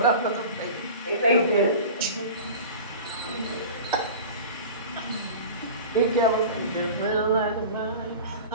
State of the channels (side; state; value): both; inverted; correlation -0.35